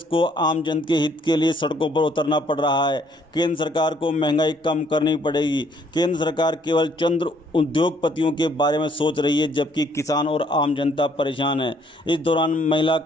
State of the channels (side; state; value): both; normal; correlation 0.65